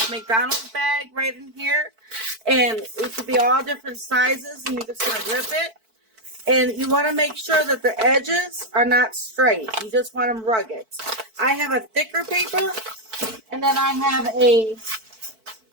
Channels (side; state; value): left; late; 4.5 ms